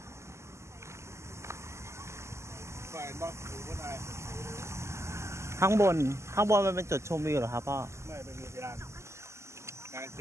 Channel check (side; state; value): left; late; 0.13 ms